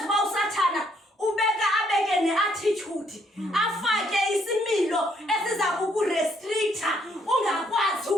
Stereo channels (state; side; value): normal; both; correlation 0.69